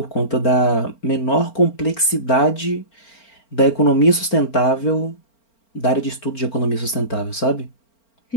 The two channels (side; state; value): right; late; 4.4 ms